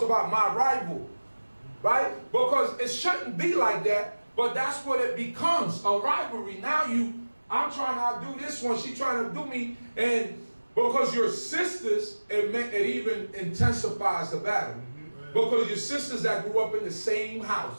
about my rival. Right? Because it shouldn't be like that, but that's what it becomes, a rivalry. Now I'm trying to outdo this one, she's trying to do me, and because you're sisters, it even intensifies the battle. Because your sisters that grew up in the same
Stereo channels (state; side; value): inverted; both; correlation -1.00